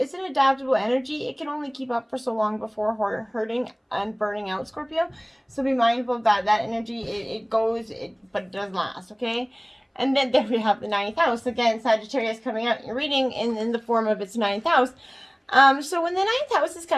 an adaptable energy. It can only keep up for so long before hurting and burning out, Scorpio. So be mindful of that. That energy, it goes, but it does last, okay? And then there we have the ninth house. Again, Sagittarius coming out in your reading in the form of its ninth house. So when the ninth house is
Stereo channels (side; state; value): both; identical; correlation 1.00